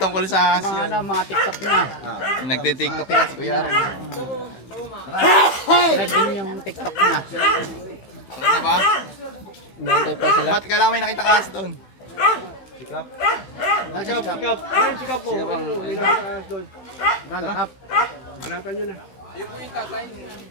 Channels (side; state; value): right; late; 16 ms